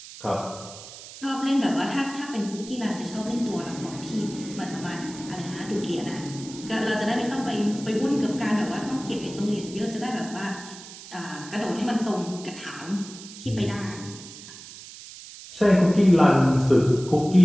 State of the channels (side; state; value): right; noise; hiss, 15 dB below the sound